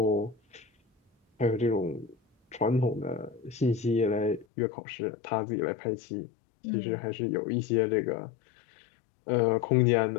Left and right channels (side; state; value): right; drops out; at 4.5 s